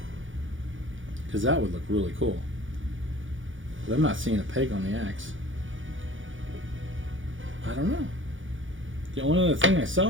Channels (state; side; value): late; left; 0.57 ms